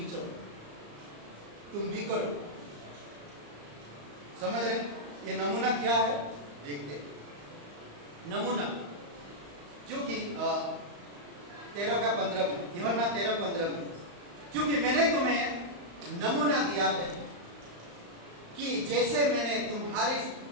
चलो, तुम भी करो। समझ रहे? ये नमूना क्या है देखते। नमूना क्योंकि 13:15 में, यूहन्ना 13:15 में, क्योंकि मैंने तुम्हें नमूना दिया है कि जैसे मैंने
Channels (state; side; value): late; left; 35 ms